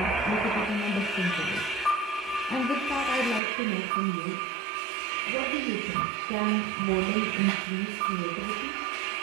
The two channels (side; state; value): left; drops out; at 3.4 s